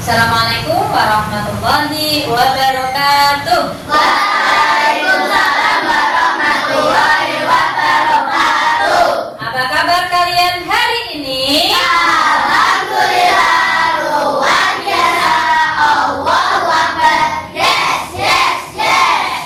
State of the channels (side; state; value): both; identical; correlation 1.00